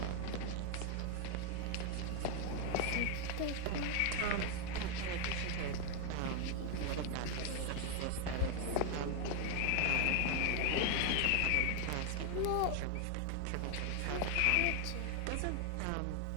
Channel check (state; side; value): different; both; correlation 0.01